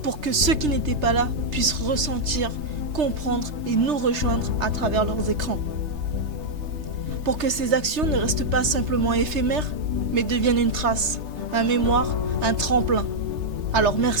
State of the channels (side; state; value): left; late; 3.3 ms